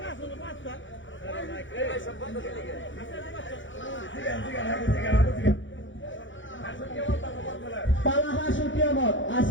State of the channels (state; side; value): late; right; 0.56 ms